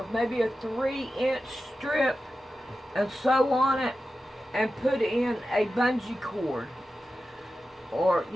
maybe a 3-inch strip and sew on it and put in a bungee cord, or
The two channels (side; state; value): both; normal; correlation 0.92